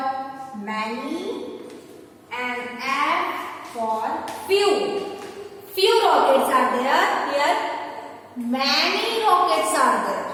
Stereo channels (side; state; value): both; identical; correlation 1.00